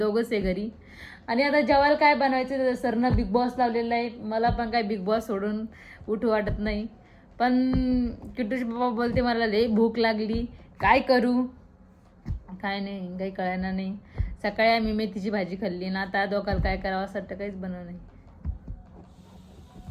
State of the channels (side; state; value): both; identical; correlation 1.00